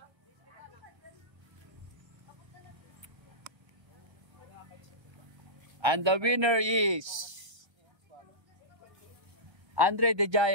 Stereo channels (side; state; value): left; late; 1.2 ms